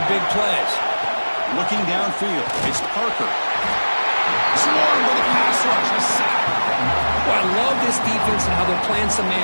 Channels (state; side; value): inverted; both; correlation -1.00